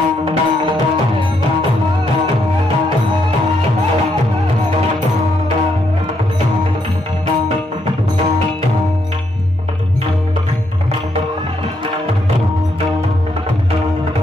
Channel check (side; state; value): both; normal; correlation 0.76